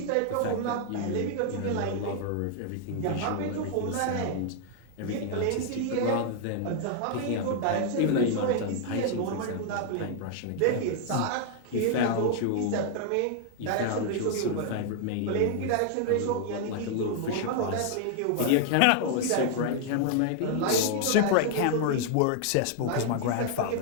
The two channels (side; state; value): both; different; correlation 0.00